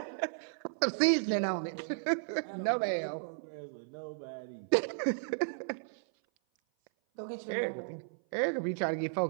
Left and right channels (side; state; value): left; silent; 55 dB below the other